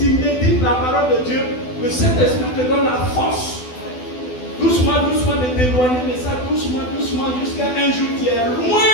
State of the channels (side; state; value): right; late; 12 ms